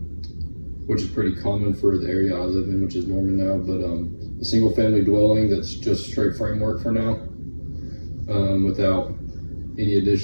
which is pretty common for the area I live in, which is Norman now, but a single family dwelling that's just straight framework for now, without any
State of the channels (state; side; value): inverted; both; correlation -1.00